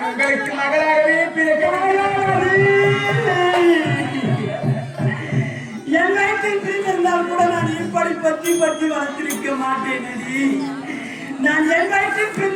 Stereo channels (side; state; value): both; identical; correlation 1.00